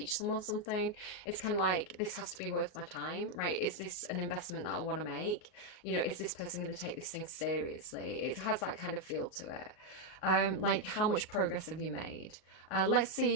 someone something, it's kind of like, this has to be worth my time, right? Is this an investment that I want to make? Is this person going to take this thing seriously? It has that kind of feel to it. Like, how much progress have you made? Let's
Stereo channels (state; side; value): late; right; 38 ms